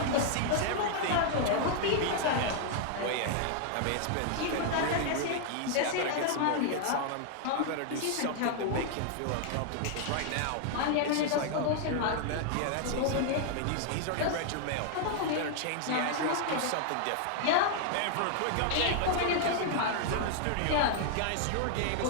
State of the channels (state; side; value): different; both; correlation 0.00